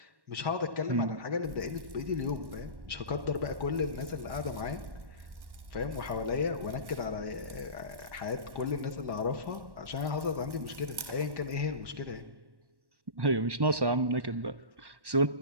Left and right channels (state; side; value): late; left; 1.1 ms